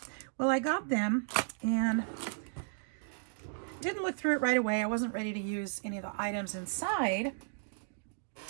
Well, I got them and didn't look through it right away. I wasn't ready to use any of the items inside.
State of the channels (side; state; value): left; silent; digital silence